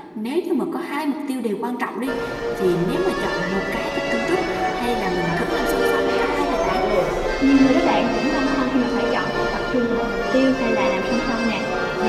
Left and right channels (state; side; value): identical; both; correlation 1.00